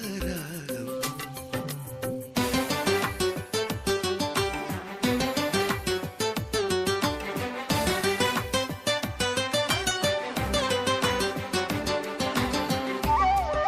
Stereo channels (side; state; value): both; identical; correlation 1.00